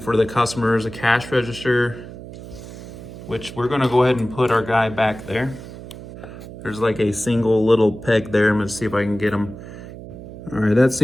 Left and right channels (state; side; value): noise; right; hum, 13 dB below the sound